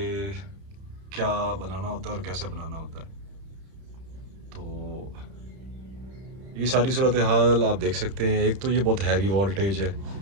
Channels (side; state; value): left; late; 31 ms